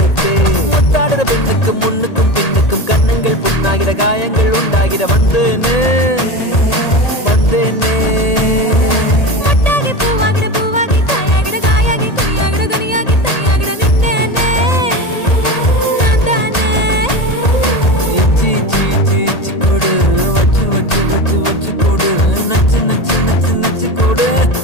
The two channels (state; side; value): late; right; 1.8 ms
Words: முத்தாடுற பெண்ணுக்கும் முன்னுக்கும் பின்னுக்கும் கண்ணுங்கள் புண்ணாகிற காயங்கள் உண்டா முத்தாகிட வந்தேனே வந்தேனே மொட்டாகி பூவாகிட பூவாகி காயாகிட காயாகி கொய்யாகிட கனியாகி தையாகிட நின்னேனே நான் தானே இச்சி இச்சி இச்சி இச்சி கொடு வச்சு வச்சு வச்சு வச்சு கொடு நச்சு நச்சு நச்சு நச்சு கொடு